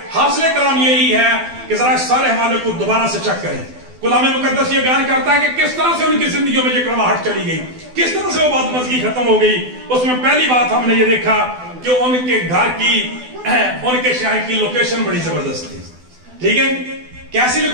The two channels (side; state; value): left; late; 12 ms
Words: हासिल कलाम यही है कि जरा इस सारे हवाले को दोबारा से चेक करें। कलाम मुकद्दस ये बयान करता है कि किस तरह से उनकी जिंदगियों में ये कड़वाहट चली गई, किस तरह से वो बदमज़गी खत्म हो गई। उसमें पहली बात हमने ये देखा कि उनके घर की, उनके शहर की लोकेशन बड़ी जबरदस्त थी, ठीक है। कैसी